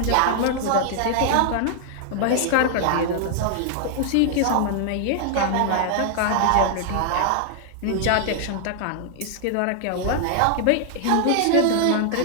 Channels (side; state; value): both; different; correlation 0.00